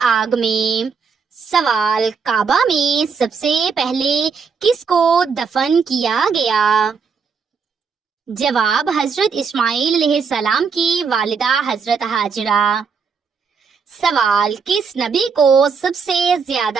آگ میں۔ سوال: کعبہ میں سب سے پہلے کس کو دفن کیا گیا؟ جواب: حضرت اسماعیل علیہ السلام کی والدہ حضرت ہاجرہ۔ سوال: کس نبی کو سب سے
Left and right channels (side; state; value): left; quieter; 5.7 dB